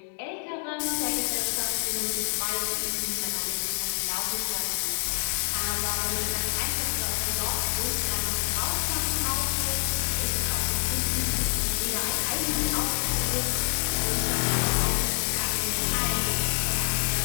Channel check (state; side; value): silent; right; digital silence